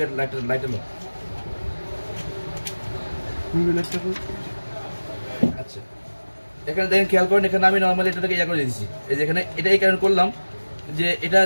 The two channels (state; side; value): inverted; both; correlation -1.00